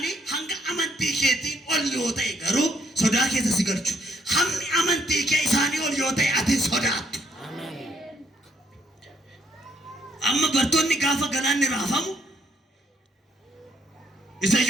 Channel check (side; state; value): both; normal; correlation 0.69